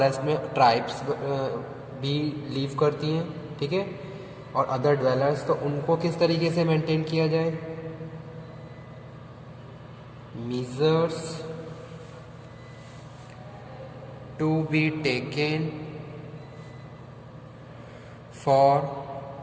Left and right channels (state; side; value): identical; both; correlation 1.00